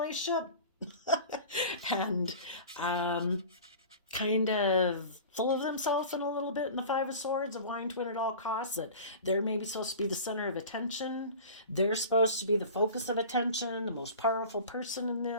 and kind of full of themselves in a little bit in the Five of Swords, of wanting to win at all costs, that they're maybe supposed to be the center of attention. They're supposed to be the focus of attention, the most powerful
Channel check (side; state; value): both; inverted; correlation -0.38